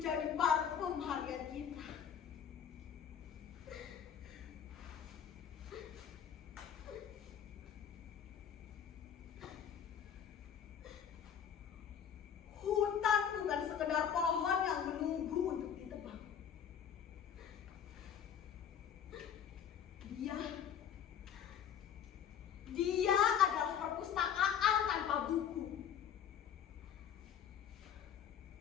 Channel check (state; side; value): quieter; right; 8.6 dB